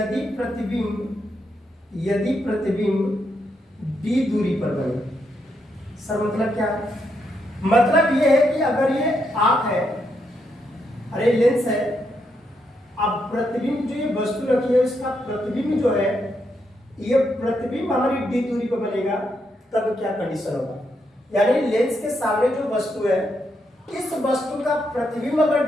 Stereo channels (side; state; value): both; normal; correlation 0.80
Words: d दूरी पर बने। सर मतलब क्या है? मतलब ये है कि अगर ये आंख है, अरे लेंस है, अब प्रतिबिंब जो ये वस्तु रखी है इसका प्रतिबिंब जो है, ये प्रतिबिंब हमारी d दूरी पर बनेगा, तब क्या कंडीशन होगा? यानी लेंस के सामने जो वस्तु है, इस वस्तु का प्रतिबिंब